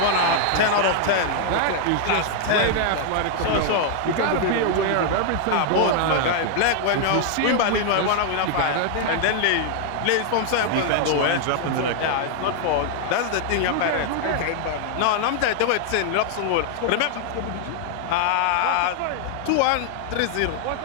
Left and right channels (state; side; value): different; both; correlation 0.00